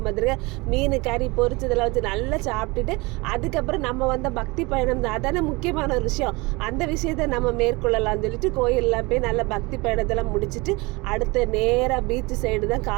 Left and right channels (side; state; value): left; quieter; 24.8 dB